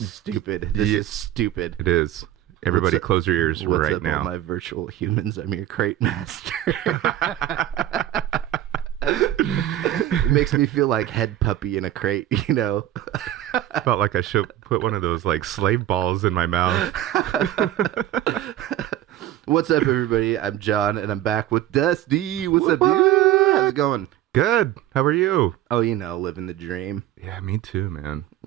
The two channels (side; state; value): left; quieter; 12.9 dB